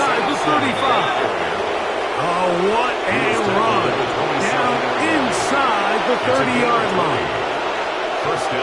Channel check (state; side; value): identical; both; correlation 1.00